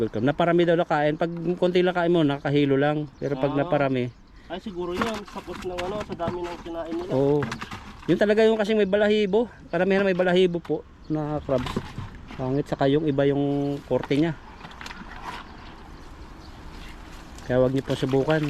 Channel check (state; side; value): identical; both; correlation 1.00